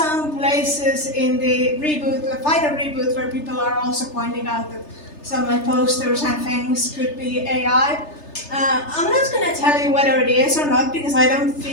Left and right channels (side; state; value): right; late; 3.3 ms